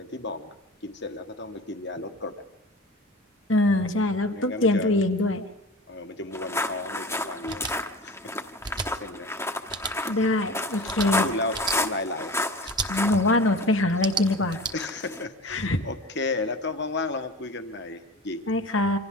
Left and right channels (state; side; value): normal; both; correlation 0.36